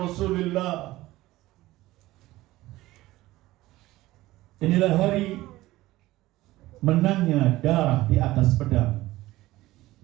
Rasulullah. Inilah hari menangnya darah di atas pedang.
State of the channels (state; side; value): quieter; left; 17.4 dB